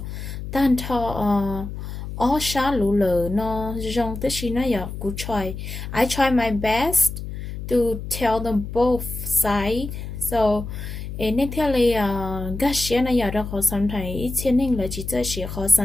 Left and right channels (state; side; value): noise; left; hum, 8 dB below the sound